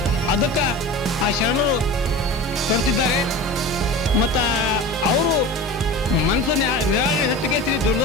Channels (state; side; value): normal; both; correlation 0.32